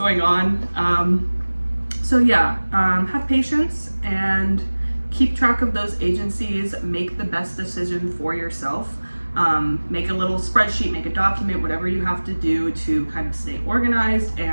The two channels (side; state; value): both; inverted; correlation -1.00